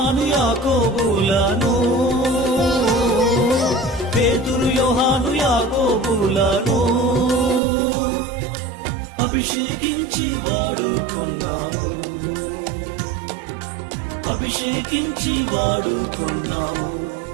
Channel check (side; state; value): left; drops out; at 7.6 s